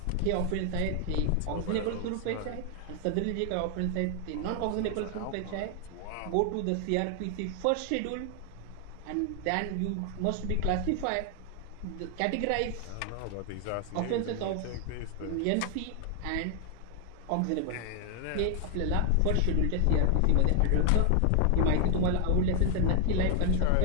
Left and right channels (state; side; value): different; both; correlation 0.00